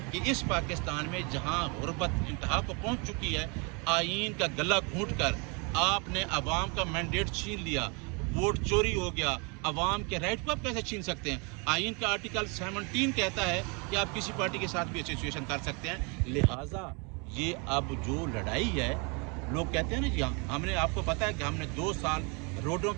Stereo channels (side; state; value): left; quieter; 32.4 dB